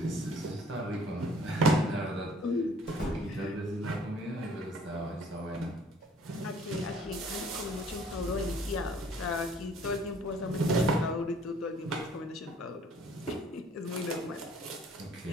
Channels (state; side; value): normal; both; correlation 0.57